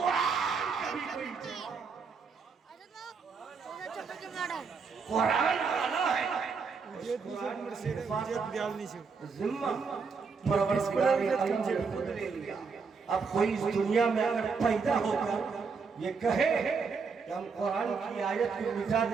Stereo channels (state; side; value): quieter; left; 5.2 dB